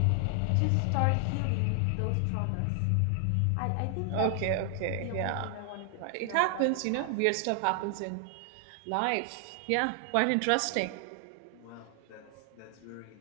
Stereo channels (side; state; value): both; different; correlation 0.00